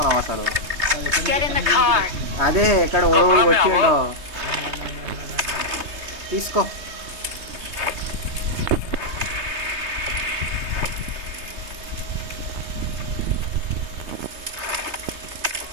అసలు. Get in the car. అదే ఎక్కడ ఓడి వచ్చిండో తీసుకో.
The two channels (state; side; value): late; left; 3.2 ms